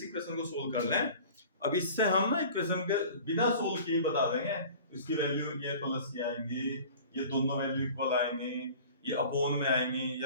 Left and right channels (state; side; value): inverted; both; correlation -0.43